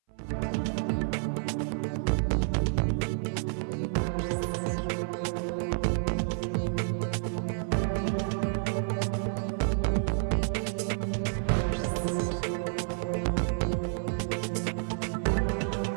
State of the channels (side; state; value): left; silent; 58 dB below the other